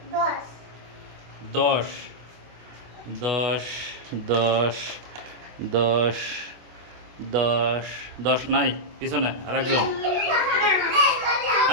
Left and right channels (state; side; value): late; left; 25 ms